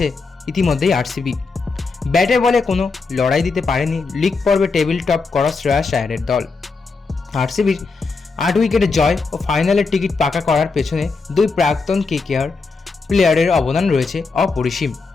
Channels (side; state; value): right; quieter; 4.3 dB